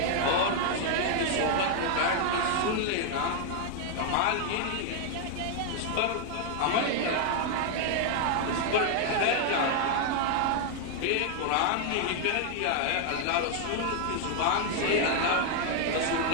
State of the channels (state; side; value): different; both; correlation 0.00